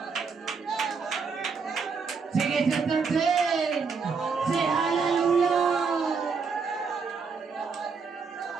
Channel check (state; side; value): quieter; left; 5.2 dB